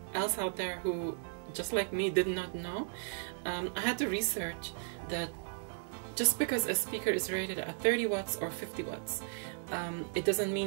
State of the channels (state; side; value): silent; left; digital silence